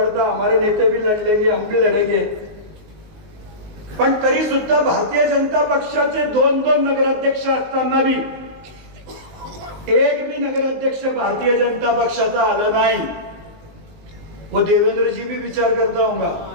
हमारे नेते भी लड़ लेंगे, हम भी लड़ेंगे. पण तरी सुद्धा भारतीय जनता पक्षाचे 2 नगराध्यक्ष असताना भी एक भी नगराध्यक्ष भारतीय जनता पक्षाचा आला नाही. वो देवेंद्र जी भी विचार करता होगा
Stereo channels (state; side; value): late; left; 19 ms